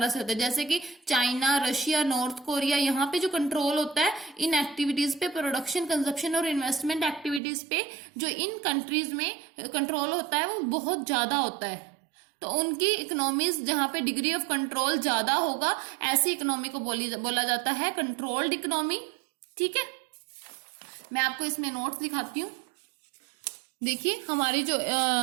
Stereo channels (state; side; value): drops out; left; at 7.4 s